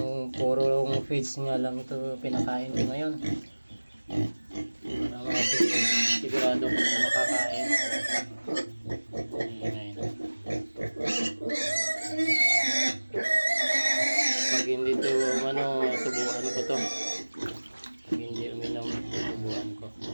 puro feeds nga lang ito pinakain ko ngayon, para sigurado ko makakain. Pag hindi to subuan ko to. Pag hindi uminom, subuan ko.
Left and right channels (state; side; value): inverted; both; correlation -1.00